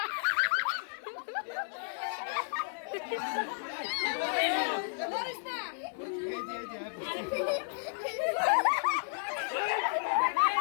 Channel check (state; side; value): silent; right; 56 dB below the other